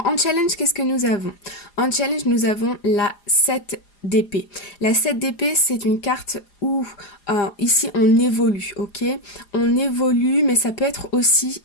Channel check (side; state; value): right; late; 4.9 ms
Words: en challenge, qu'est-ce que nous avons? En challenge, nous avons la 7 d'épée. La 7 d'épée, c'est une carte où ici on évolue, ok? On évolue, mais ça peut être aussi